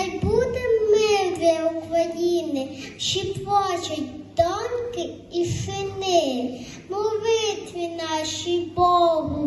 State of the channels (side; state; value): both; identical; correlation 1.00